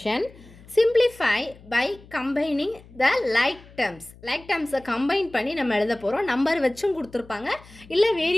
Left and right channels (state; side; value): noise; left; hum, 22 dB below the sound